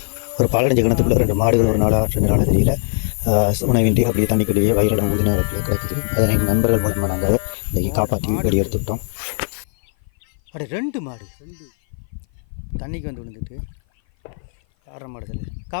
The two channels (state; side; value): silent; right; 56 dB below the other